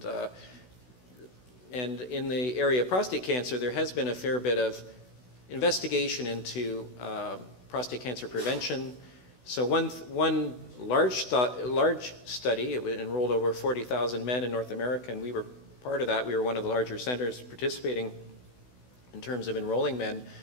And in the area of prostate cancer, there has been a fair bit of investigation into prostate cancer prevention. So one large study, it enrolled over 40,000 men in North America, and we were part of that. We were one of the larger centers participating in terms of enrolling men,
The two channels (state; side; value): late; right; 16 ms